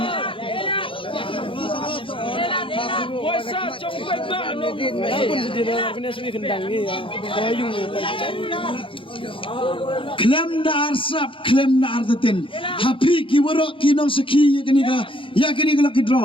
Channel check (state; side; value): late; right; 0.25 ms